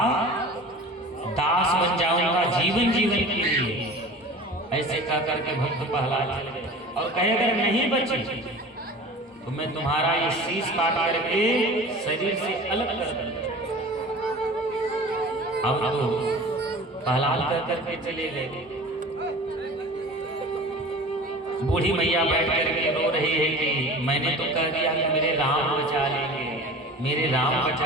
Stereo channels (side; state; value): both; normal; correlation 0.39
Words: दास बन जाऊंगा जीवन के लिए। ऐसे कह करके भक्त प्रहलाद चले गए और कहे अगर नहीं बचे तो मैं तुम्हारा ये शीश काट करके शरीर से अलग कर दूंगा। अब तो प्रहलाद कह करके चले गए। बूढ़ी मैया बैठ करके रो रही है कि मैंने तो कह दिया कि मेरे राम बचा लेंगे, मेरे राम